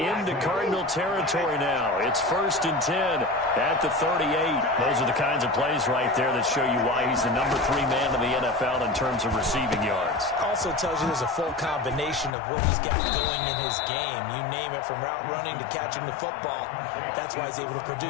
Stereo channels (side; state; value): right; drops out; at 12.3 s